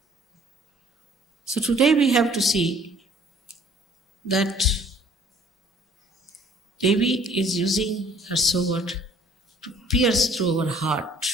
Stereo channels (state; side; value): normal; both; correlation 0.56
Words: So today we have to see that Devi is using her sword to pierce through our heart